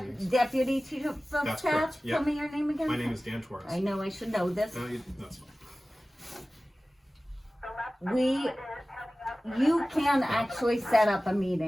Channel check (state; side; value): normal; both; correlation 0.97